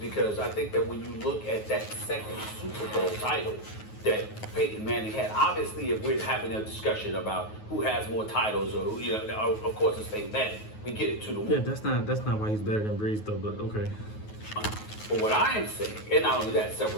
I think that when you look at that second Super Bowl title that Peyton Manning had, obviously if we're having a discussion about who has more titles or who, of course it's Peyton Manning. We get it to the Yeah, that's not why he's better than Brees though, but okay. But what I am saying, and not only that,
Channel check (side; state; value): right; late; 9.4 ms